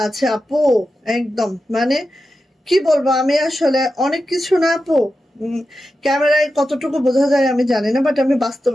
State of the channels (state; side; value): normal; both; correlation 0.91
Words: আছে আপু, একদম মানে কি বলবো, আমি আসলে অনেক কিছু না আপু, ক্যামেরায় কতটুকু বোঝা যায় আমি জানি না, বাট আমি